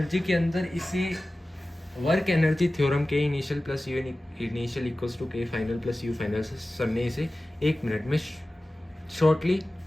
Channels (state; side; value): normal; both; correlation 0.96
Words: के अंदर इसे work energy theorem K initial plus U initial equals to K final plus U final से सर ने इसे 1 मिनट में शॉर्टली